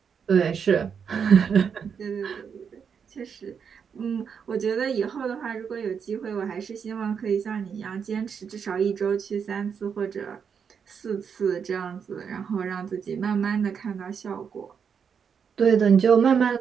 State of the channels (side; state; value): left; quieter; 6.8 dB